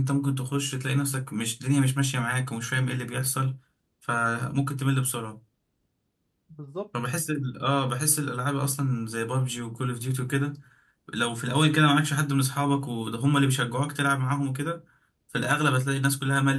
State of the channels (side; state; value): both; identical; correlation 1.00